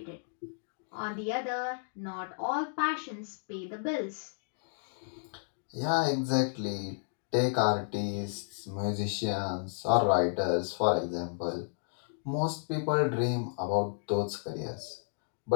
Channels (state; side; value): silent; right; digital silence